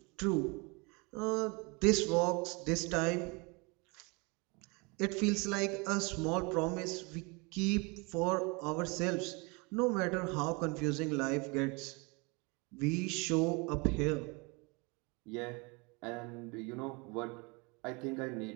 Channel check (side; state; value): left; quieter; 29.0 dB